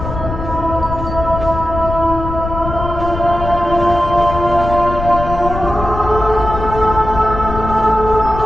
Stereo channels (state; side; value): noise; left; rumble, 7 dB below the sound